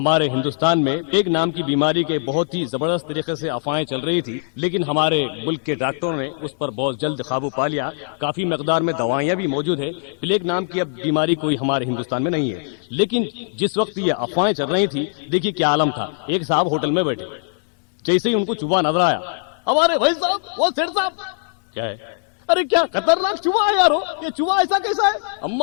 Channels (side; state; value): right; silent; digital silence